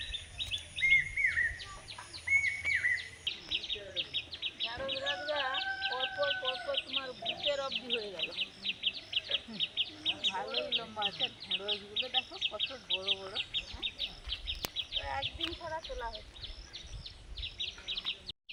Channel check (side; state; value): both; identical; correlation 1.00